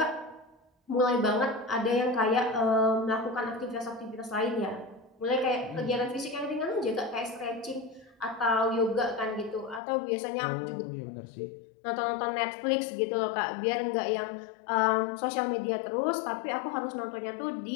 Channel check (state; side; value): drops out; right; at 9.8 s